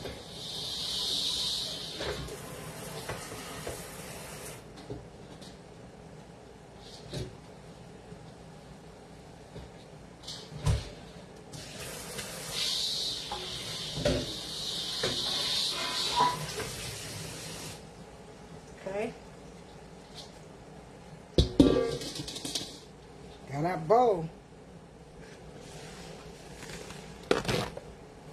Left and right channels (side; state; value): both; identical; correlation 1.00